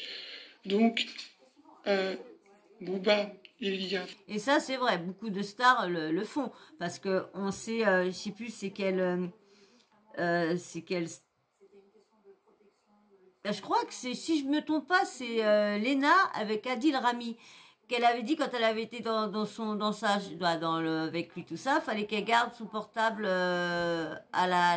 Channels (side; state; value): both; identical; correlation 1.00